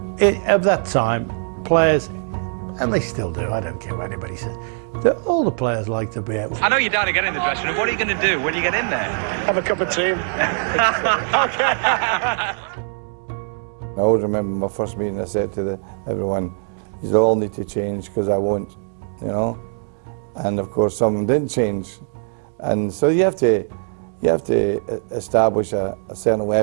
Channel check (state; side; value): silent; left; digital silence